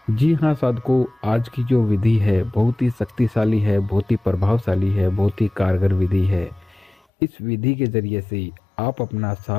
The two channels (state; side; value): drops out; right; at 7.0 s